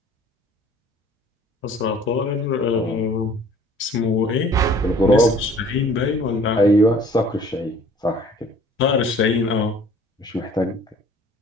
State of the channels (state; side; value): normal; both; correlation 0.52